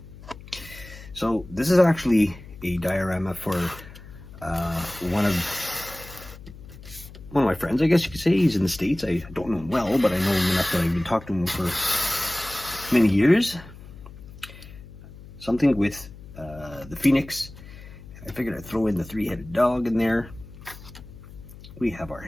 So this is actually a diorama for one of my friends, I guess you could say. He's in the States. I don't know him well, but I know him enough that I've been talking to him for many years. Something with the Phoenix. I figured I'd throw in the three-headed dog in there. We have our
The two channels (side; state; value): left; noise; hum, 17 dB below the sound